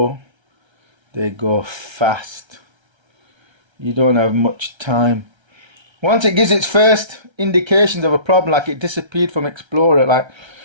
fast. You don't have much time. Once it gives its first indications of a problem, like it disappeared from Explorer, like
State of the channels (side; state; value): left; late; 1.3 ms